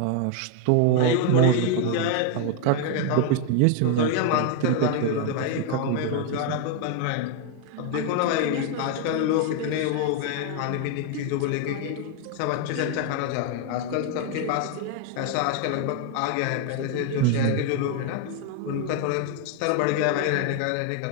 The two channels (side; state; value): both; different; correlation 0.01